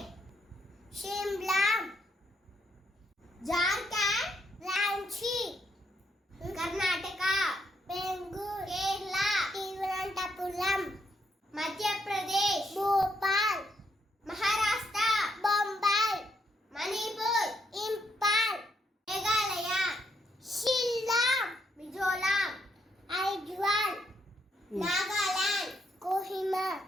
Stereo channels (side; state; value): both; normal; correlation 0.76